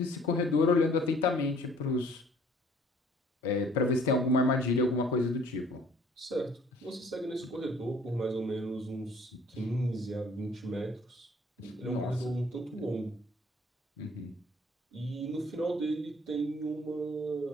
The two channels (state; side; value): normal; both; correlation 0.56